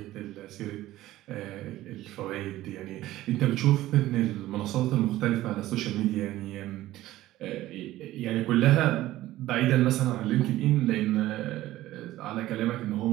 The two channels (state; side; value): quieter; left; 15.5 dB